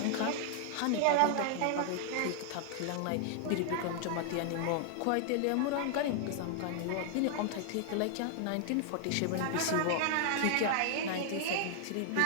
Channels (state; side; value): different; both; correlation 0.00